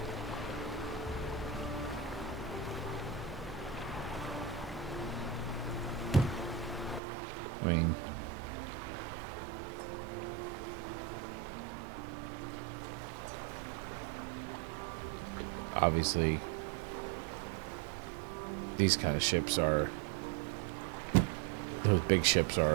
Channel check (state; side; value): drops out; left; at 7.0 s